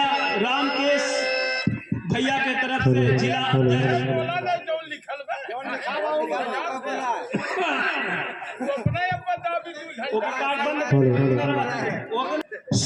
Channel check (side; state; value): both; identical; correlation 1.00